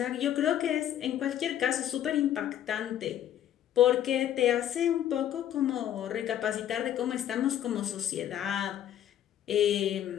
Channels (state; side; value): quieter; right; 11.0 dB